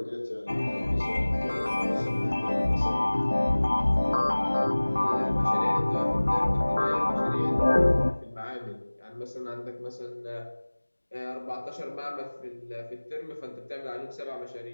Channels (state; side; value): inverted; both; correlation -1.00